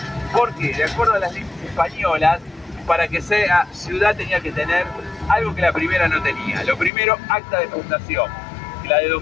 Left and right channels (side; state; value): right; drops out; at 6.9 s